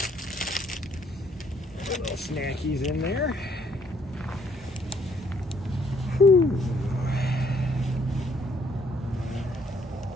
Little snackies in there. Whew.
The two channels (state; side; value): normal; both; correlation 0.67